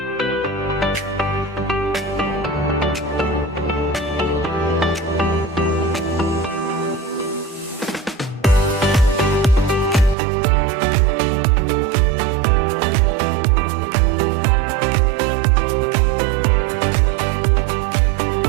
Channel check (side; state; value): left; drops out; at 10.2 s